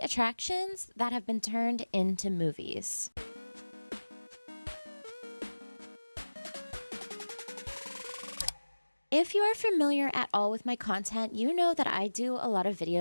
that have been turned into movies. If you are familiar at all with my content, you know that I do a lot of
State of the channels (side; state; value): both; inverted; correlation -1.00